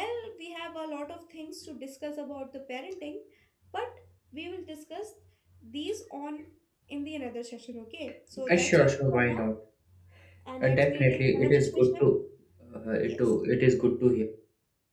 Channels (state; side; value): identical; both; correlation 1.00